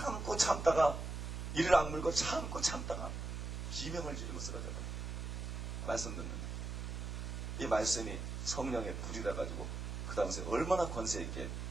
참다가 이를 악물고 참고 참다가 비명을 지르고 쓰러져버려요. 말씀 듣는데 이 말씀이 성령의 불이라 가지고 그 당시에 얼마나 권세 있게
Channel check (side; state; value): right; noise; hum, 5 dB below the sound